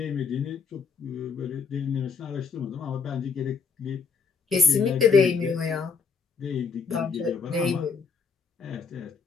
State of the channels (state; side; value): quieter; right; 5.3 dB